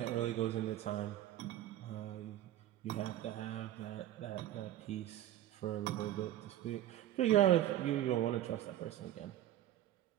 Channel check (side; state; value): left; quieter; 12.9 dB